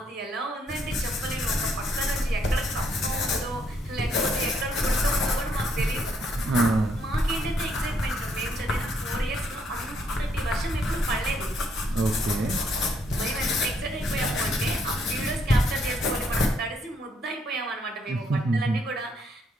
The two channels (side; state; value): both; normal; correlation 0.71